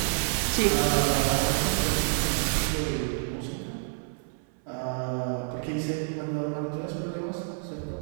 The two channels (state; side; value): silent; left; 59 dB below the other